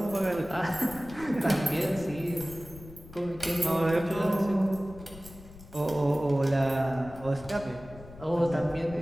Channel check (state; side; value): noise; left; rumble, 18 dB below the sound